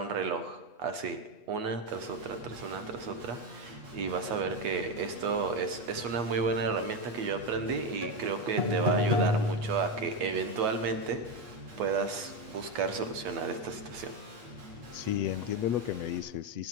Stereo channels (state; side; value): late; left; 8.3 ms